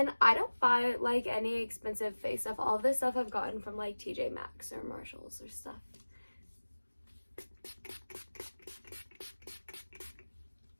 I don't buy any expensive face stuff. All of this stuff I've gotten from TJ Maxx or Marshalls or stuff.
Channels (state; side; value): inverted; both; correlation -1.00